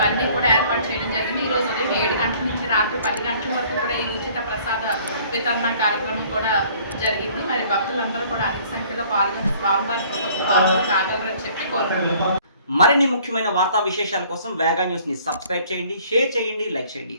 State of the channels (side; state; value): both; inverted; correlation -0.56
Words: కూడా ఏర్పాటు చేయడం జరిగింది. ఈరోజు ఉదయం 7 గంటల నుంచి రాత్రి 10 గంటల వరకు కూడా ఈ ఉచిత ప్రసాద వితరణ కార్యక్రమం కూడా జరిగింది. మరి భక్తులందరూ కూడా అధిక సంఖ్యలో పాల్గొని స్వామివారి పాల్గొని కాగలరని చెప్పి కోరుకుంటున్నాం. మరిన్ని ముఖ్యమైన వార్తా విశేషాల కోసం వేగా న్యూస్ ని సబ్స్క్రైబ్ చేయండి, షేర్ చేయండి, లైక్ చేయండి.